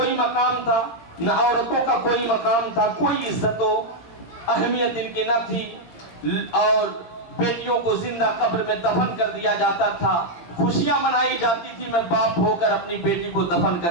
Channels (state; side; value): late; right; 17 ms